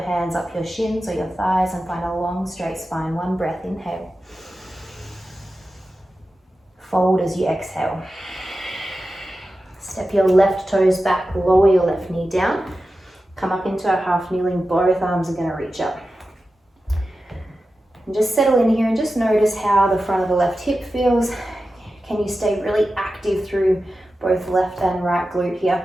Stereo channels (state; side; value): normal; both; correlation 0.93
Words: up your shins or your thighs and find a long straight spine. One breath, inhale. Fold as you exhale. Step your left toes back, lower your left knee down. Come up into a half kneeling, both arms are going to reach up. And just settle in here and just notice how the front of the left hip feels. Can you stay really active through both left and right glute here?